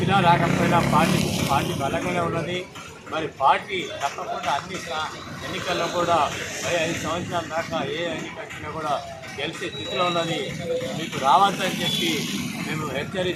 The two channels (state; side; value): identical; both; correlation 1.00